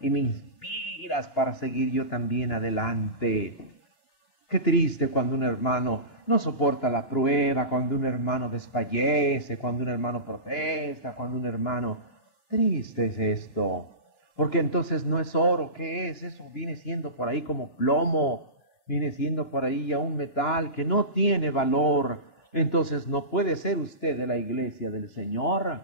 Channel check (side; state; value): right; late; 2.9 ms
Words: me inspiras para seguir yo también adelante. Qué triste cuando un hermano no soporta la prueba, cuando un hermano desfallece, cuando un hermano protesta, cuando un hermano... Triste es esto, porque entonces no es oro. ¿Qué es? Eso viene siendo por ahí como plomo, viene siendo por ahí ya un metal que no tiene valor. Entonces no puede ser usted de la iglesia del Señor.